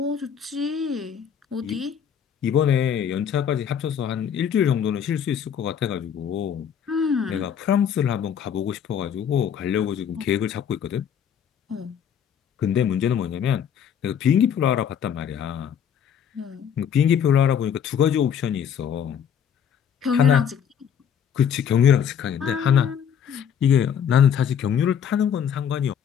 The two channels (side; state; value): right; quieter; 8.2 dB